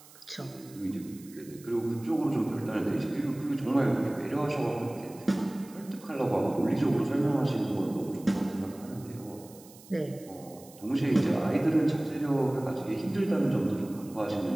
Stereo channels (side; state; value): right; noise; hiss, 22 dB below the sound